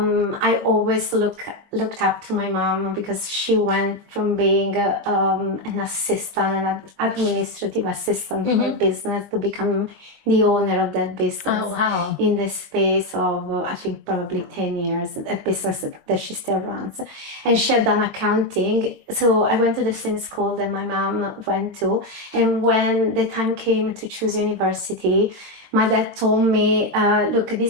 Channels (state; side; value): late; left; 20 ms